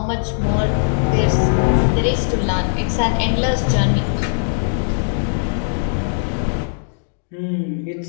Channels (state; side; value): silent; right; digital silence